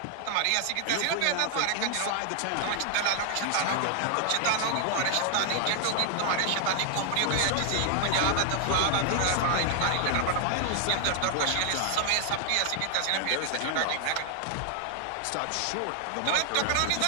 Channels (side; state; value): both; different; correlation 0.00